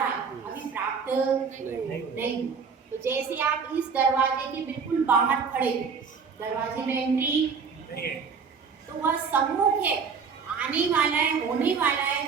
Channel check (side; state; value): left; quieter; 5.7 dB